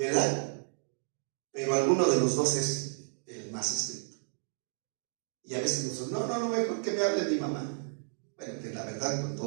Pero alguno de los dos es el más estricto. Y a veces nosotros, no, mejor que me hable mi mamá. Bueno, que la verdad, con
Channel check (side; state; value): left; silent; 56 dB below the other